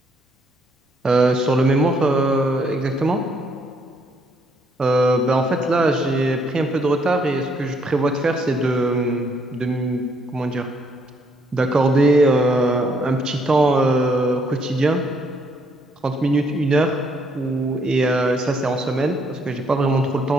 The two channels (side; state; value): both; normal; correlation 0.70